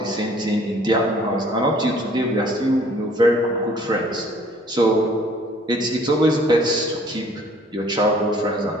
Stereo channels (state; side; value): normal; both; correlation 0.56